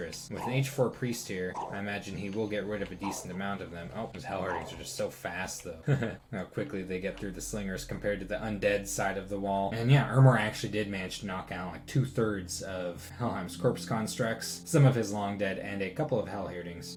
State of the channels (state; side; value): identical; both; correlation 1.00